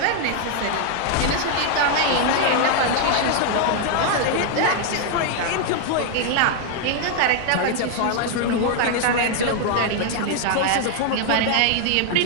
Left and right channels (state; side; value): different; both; correlation 0.00